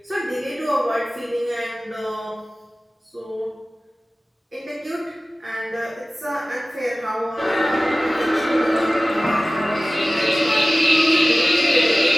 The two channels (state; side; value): normal; both; correlation 0.97